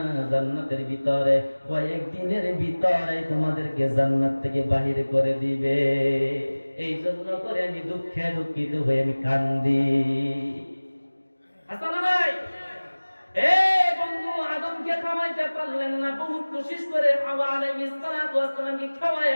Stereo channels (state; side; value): inverted; both; correlation -1.00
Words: জান্নাতের ভিতরে, কয়েকদিনের ভিতরে তোমাদেরকে জান্নাত থেকে বাহির করে দিবে। এই জন্য করে আমি দুঃখে দুঃখিত হয়ে আমি কান্দি। আসলে ভাই, বন্ধু, আদমকে খাওয়াইতে পারলেন না, বহুত কোশিশ করে হাওয়া আলাইহিস সালাতু ওয়াস সালামকে